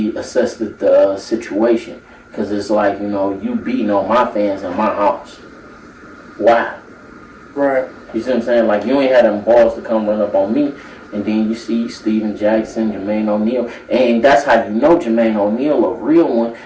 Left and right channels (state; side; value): identical; both; correlation 1.00